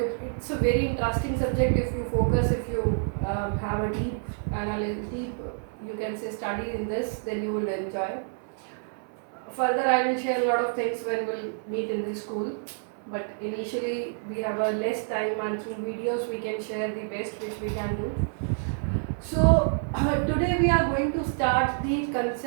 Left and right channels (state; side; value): silent; left; 59 dB below the other